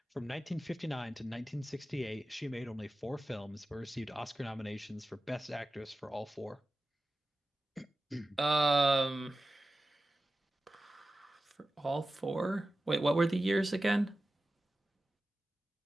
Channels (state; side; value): normal; both; correlation 0.94